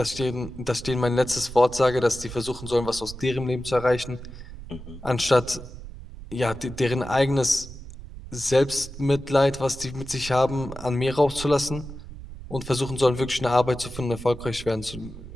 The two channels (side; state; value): right; noise; rumble, 13 dB below the sound